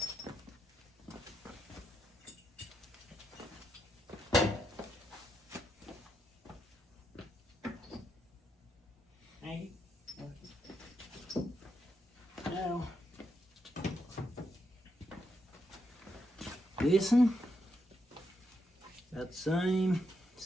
this one, about the same.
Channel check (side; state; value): both; normal; correlation 0.81